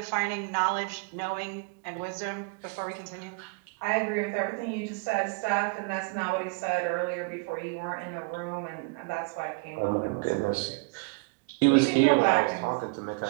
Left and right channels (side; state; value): left; quieter; 29.7 dB